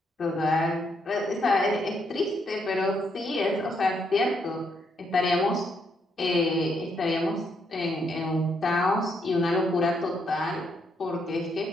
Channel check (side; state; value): both; normal; correlation 0.75